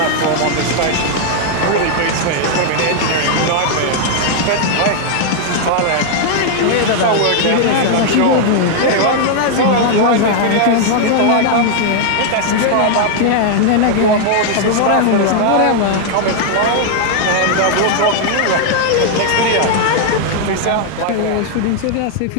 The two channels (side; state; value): both; different; correlation 0.00